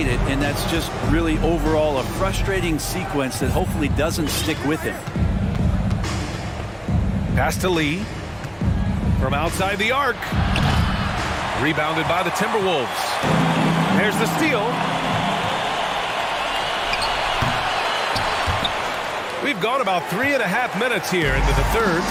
it, and that's just really overall a frustrating sequence that hopefully doesn't stick with him. Pass to Lee. From outside the arc. Rebounded by the Timberwolves. There's the steal. We've gone about 3.5 minutes here into the third.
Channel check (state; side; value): identical; both; correlation 1.00